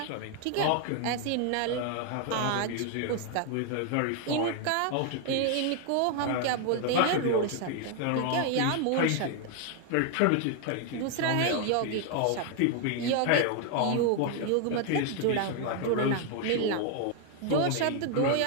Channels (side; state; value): both; different; correlation 0.01